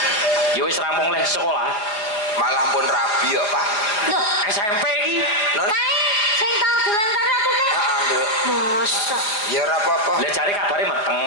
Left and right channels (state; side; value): late; right; 4.8 ms